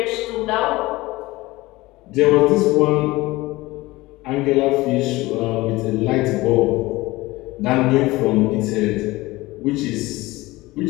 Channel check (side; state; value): right; quieter; 20.0 dB